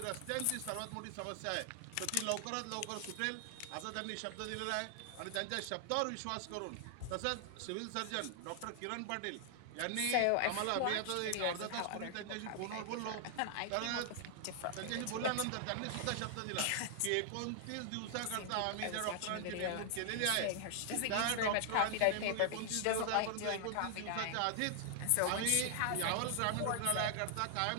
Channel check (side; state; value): both; different; correlation 0.00